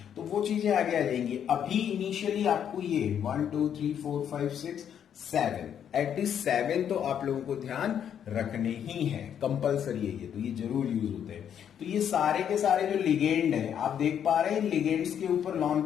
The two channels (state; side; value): quieter; right; 8.9 dB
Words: तो वो चीजें आगे आ जाएंगी। अभी इनिशियली आपको ये 1 2 3 4 5 6 7 एटलीस्ट 7 तो आप लोगों को ध्यान रखने ही है, कंपलसरी है ये, तो ये जरूर यूज होते हैं। तो ये सारे के सारे जो लिगेंड है आप देख पा रहे हैं, लिगेंड्स के ऊपर लॉन